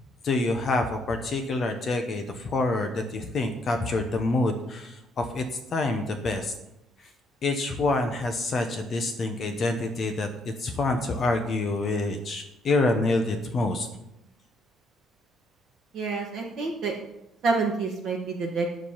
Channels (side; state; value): both; normal; correlation 0.70